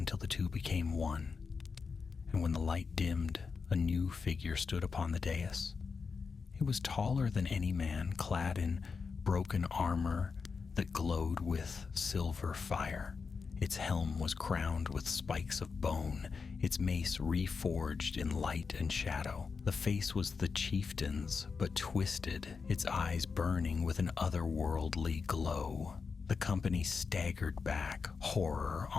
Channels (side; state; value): right; quieter; 5.2 dB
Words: the two became one. And when the light dimmed, a new figure stood upon the dais. It was taller than any man, clad in broken armor that glowed with silver fire. Its helm was crowned with spikes of bone, its mace reforged in light and shadow. The face was the chieftain's, but twisted, its eyes burning with an otherworldly glow. The company staggered back, horror